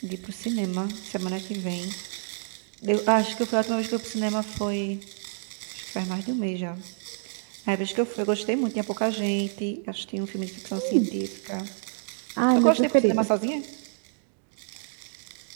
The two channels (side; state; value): left; silent; digital silence